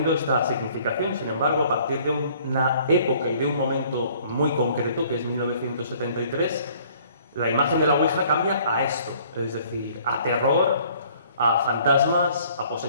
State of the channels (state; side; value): inverted; both; correlation -0.57